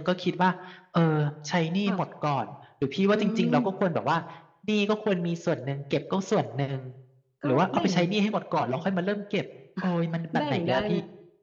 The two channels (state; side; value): identical; both; correlation 1.00